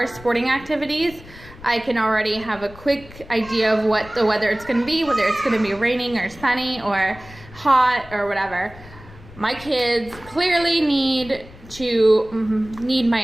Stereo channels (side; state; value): left; noise; rumble, 19 dB below the sound